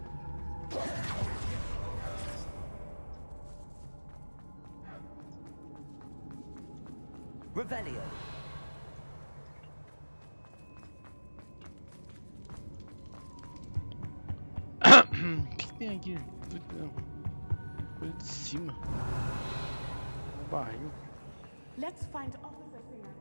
Revelio. O que tem aqui? Coisa de cima. Um barril. Let's find Officer Singer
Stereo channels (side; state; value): both; inverted; correlation -1.00